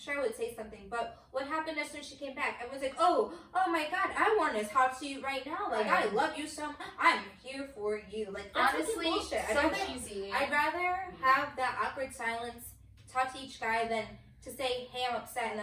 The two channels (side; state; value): both; identical; correlation 1.00